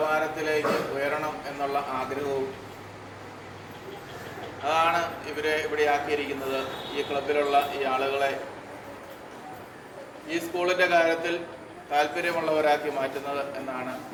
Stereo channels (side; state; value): both; identical; correlation 1.00